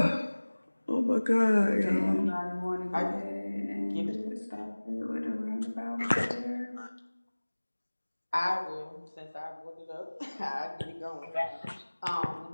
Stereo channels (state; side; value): inverted; both; correlation -1.00